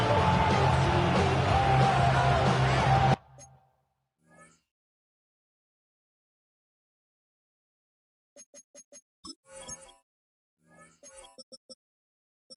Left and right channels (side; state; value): both; identical; correlation 1.00